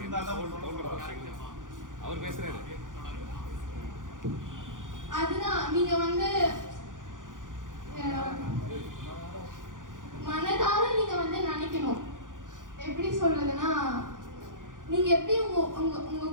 அவர் பேசுறாரு. அதுதான் நீங்க மனதார நீங்க நினைக்கணும். எப்படி சொல்றதுன்னா, நீங்க எப்படி உங்க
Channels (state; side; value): late; left; 0.88 ms